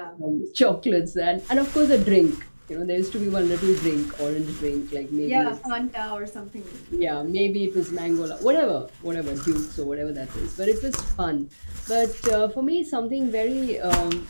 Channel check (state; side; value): inverted; both; correlation -1.00